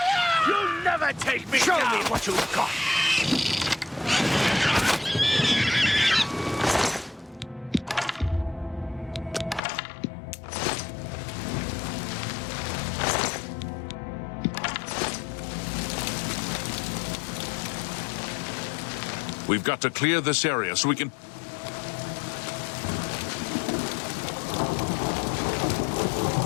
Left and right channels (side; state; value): right; drops out; at 9.6 s